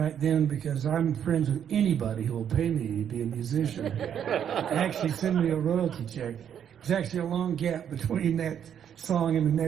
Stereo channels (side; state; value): left; quieter; 8.9 dB